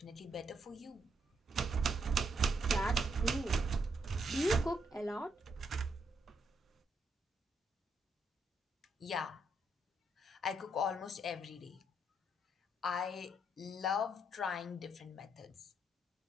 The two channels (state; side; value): normal; both; correlation 0.76